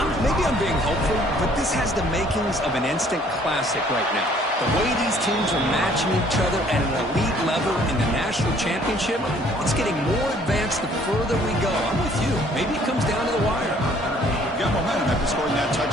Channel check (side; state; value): both; normal; correlation 0.59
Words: maybe I'm being hopeful, but this has the makings of an instant classic right now. The way these teams are matching each other at an elite level in the national championship, it's getting more advanced the further we go. I'm with you. Maybe it comes down to the wire. Got momentum after scoring that